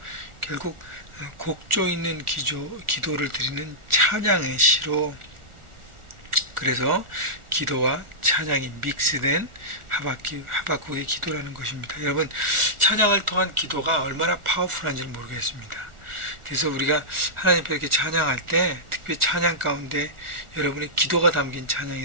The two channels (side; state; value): left; late; 1.6 ms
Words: 결국 곡조 있는 기도를 드리는 찬양의 시로, 그래서 기도와 찬양이 믹스된 하박국의 기도라는 것입니다. 여러분, 찬양을 통한 기도가 얼마나 파워풀한지를 모르겠습니다. 그래서 우리가 하나님 앞에 이렇게 찬양할 때 특별히 찬양 가운데 여러분의 기도가 담긴